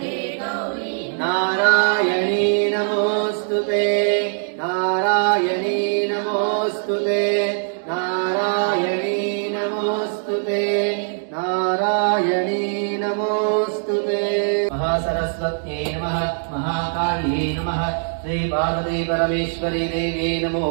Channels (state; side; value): silent; left; digital silence